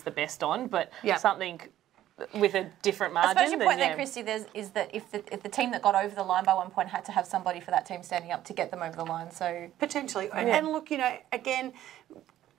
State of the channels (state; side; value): quieter; left; 12.8 dB